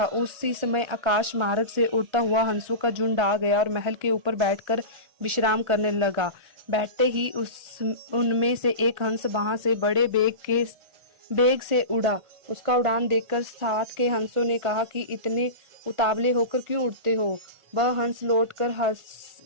उसी समय आकाश मार्ग से उड़ता हुआ हंसों का झुंड आ गया और महल के ऊपर बैठकर विश्राम करने लगा। बैठते ही उनमें से एक हंस वहां से बड़े बेग से उड़ा। उसका उड़ान देखकर साथ के हंसों ने कहा कि इतने उतावले होकर क्यों उड़ते हो। वह हंस लौटकर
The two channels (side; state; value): left; late; 1.4 ms